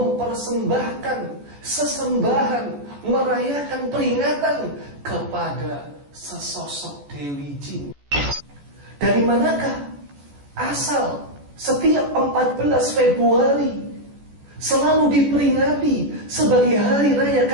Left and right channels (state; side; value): late; left; 14 ms